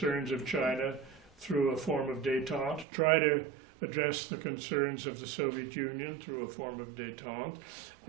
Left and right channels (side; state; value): left; drops out; at 2.9 s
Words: of China through a form of détente, try to address the concerns of the Soviet Union through a form of détente,